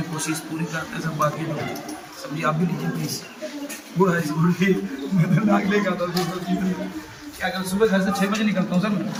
कोशिश पूरी करते हैं सब। बाकी लोग सब्जी आप भी लीजिए प्लीज। गुड़ है गुड़ की मैं तो नाक लेगा था क्या कर सुबह घर से 6 बजे निकलता हूँ सर।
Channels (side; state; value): both; identical; correlation 1.00